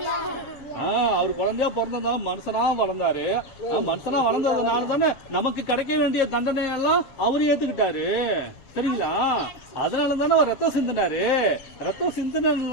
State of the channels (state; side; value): late; right; 7.8 ms